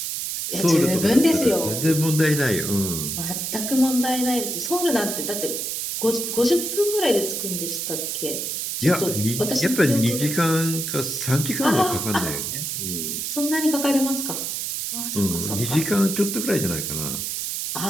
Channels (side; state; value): right; noise; hiss, 3 dB below the sound